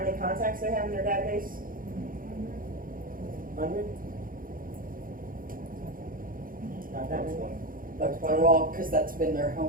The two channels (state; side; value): late; left; 0.41 ms